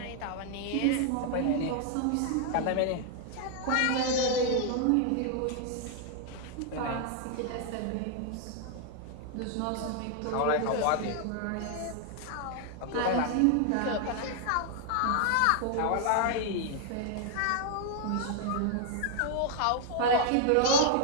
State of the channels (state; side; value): different; both; correlation 0.00